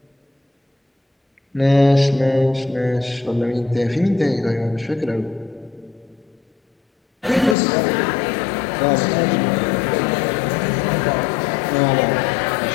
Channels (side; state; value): right; drops out; at 7.6 s